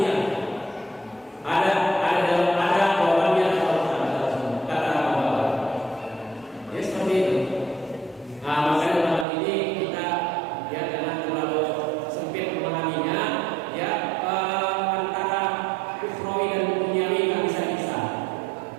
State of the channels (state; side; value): drops out; left; at 9.2 s